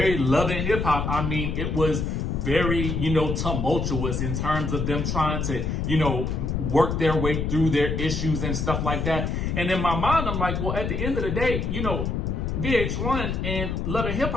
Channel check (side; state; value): left; noise; rumble, 1 dB below the sound